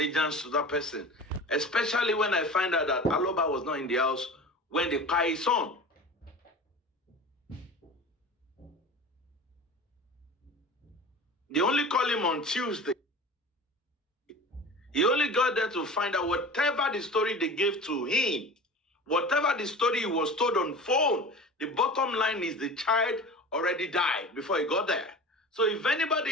to that person. Especially when I find out that Aloba was not in the house when they pie his son. They only call him on Tuesday. He only got there to find out whatever the story they gave to him, whatever the story he was told on phone, the bottom line is the child already died before he got there. So if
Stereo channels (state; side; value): normal; both; correlation 0.36